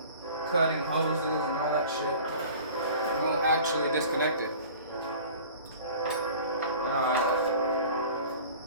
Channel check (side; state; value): both; inverted; correlation -0.43